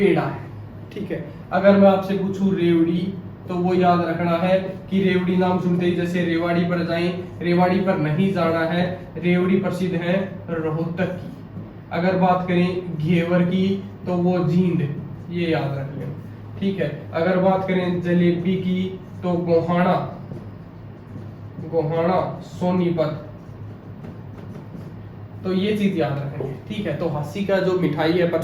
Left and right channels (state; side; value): identical; both; correlation 1.00